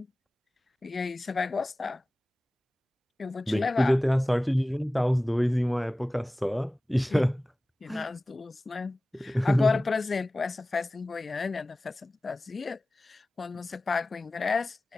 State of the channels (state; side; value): normal; both; correlation 0.97